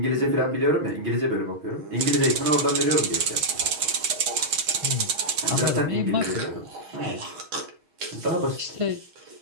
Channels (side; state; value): left; late; 6.3 ms